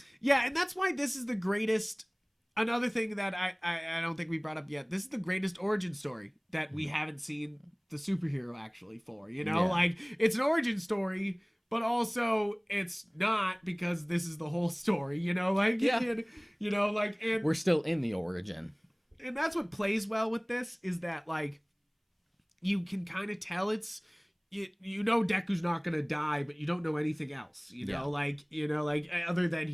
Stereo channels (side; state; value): both; identical; correlation 1.00